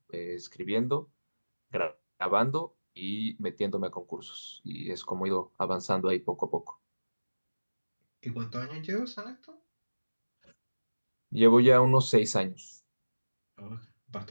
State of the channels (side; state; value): both; inverted; correlation -1.00